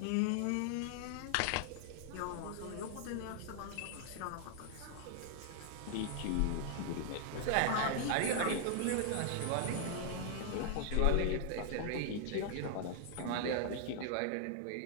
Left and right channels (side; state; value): both; different; correlation 0.00